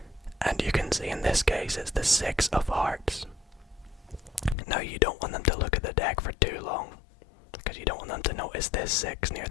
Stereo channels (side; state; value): right; drops out; at 4.5 s